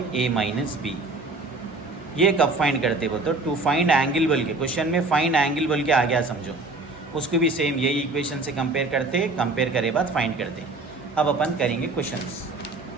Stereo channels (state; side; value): quieter; left; 3.3 dB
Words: A minus B। ये कब find करते बोलते हो, टू फाइंड एंगल बोल के। क्वेश्चन में फाइंड एंगल बोल के आ गया समझो, उसको भी सेम यही इक्वेशन से कंपेयर करते, कंपेयर करे बाद फाइंड करते। अब अपन करेंगे क्वेश्चंस।